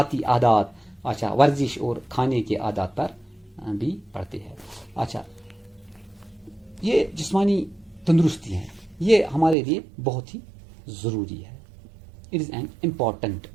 عادات، اچھا، ورزش اور کھانے کے عادات پر بھی پڑتے ہیں. اچھا، یہ جسمانی تندرستی ہے، یہ ہمارے لیے بہت ہی ضروری ہے. It is an important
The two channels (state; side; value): drops out; left; at 9.6 s